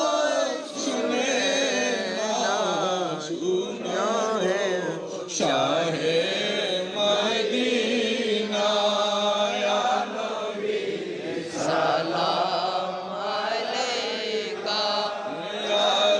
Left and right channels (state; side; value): identical; both; correlation 1.00